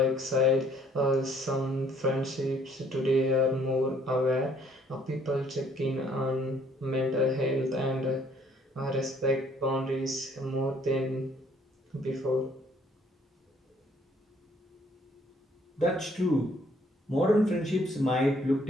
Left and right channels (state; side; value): normal; both; correlation 0.62